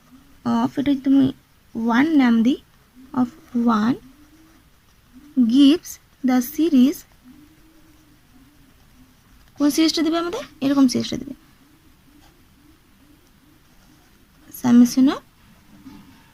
অফ, এটা তুমি 1 নাম দিই, অফ 1 গিভস দ্য সিরিজ, কোন সিরিজটা দেবে আমাদের, এরকম সিরিজটা দেবে, summation of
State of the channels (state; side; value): identical; both; correlation 1.00